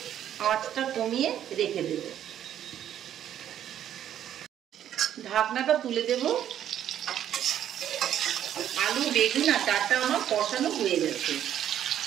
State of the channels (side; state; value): left; quieter; 10.6 dB